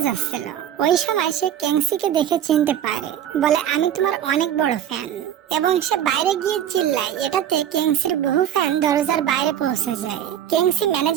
যাচ্ছিল। ওই সময় সে ক্যাংসিকে দেখে চিনতে পারে, বলে আমি তোমার অনেক বড় ফ্যান, এবং সে বাইরে গিয়ে চিল্লায়। এটাতে কেংসির বহু ফ্যান দরজার বাইরে পৌঁছে যায়। কেংসি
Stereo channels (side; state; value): left; quieter; 10.4 dB